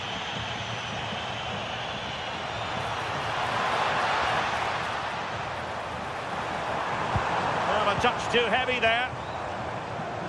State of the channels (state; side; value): identical; both; correlation 1.00